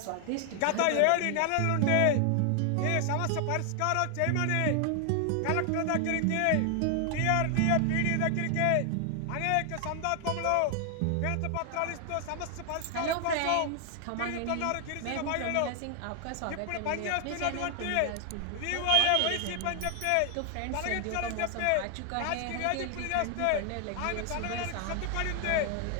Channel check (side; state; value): both; different; correlation 0.00